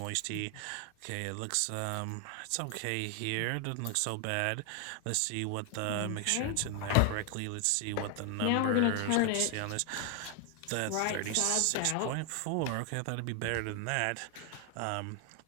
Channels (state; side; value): different; both; correlation 0.00